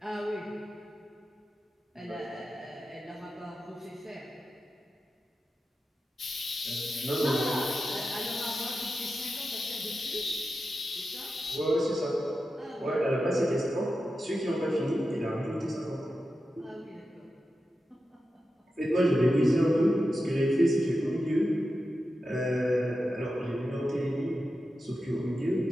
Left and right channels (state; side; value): normal; both; correlation 0.91